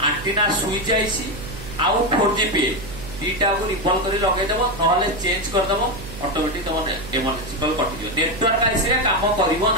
एंटीना सुई जाइसी आउ 4G पे दीटा को रिकॉल करी लगे देबो नहले चेंज कर देबो ऑटोमेटिक तम इमरजेंसी कॉल कटि दियो नेटवर्क आइसरे काम करिवो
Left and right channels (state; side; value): noise; right; hum, 13 dB below the sound